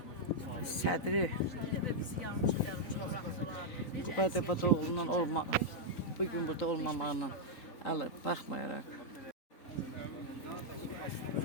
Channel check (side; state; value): right; late; 3.9 ms